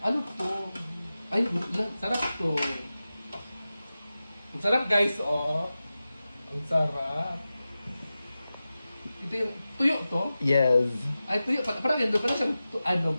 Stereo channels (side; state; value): both; inverted; correlation -0.94